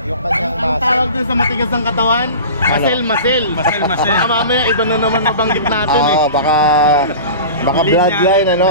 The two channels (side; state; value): both; inverted; correlation -0.36